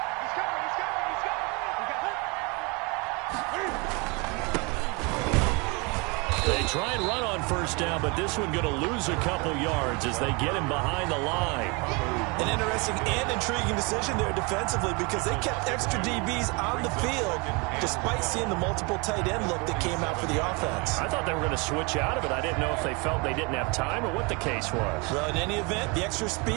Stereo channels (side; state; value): left; quieter; 29.5 dB